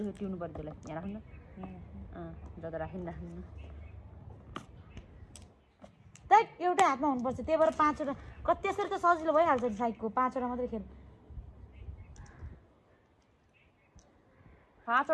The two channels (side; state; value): both; identical; correlation 1.00